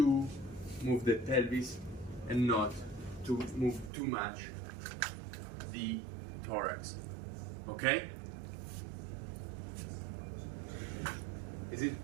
move the pelvis and not to move too much the thorax. Okay? Is it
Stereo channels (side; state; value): left; drops out; at 3.9 s